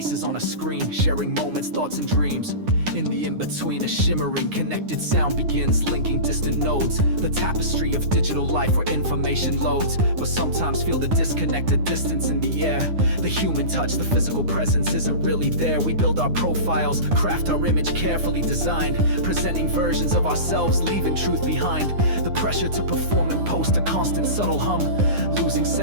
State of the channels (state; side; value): late; left; 9.7 ms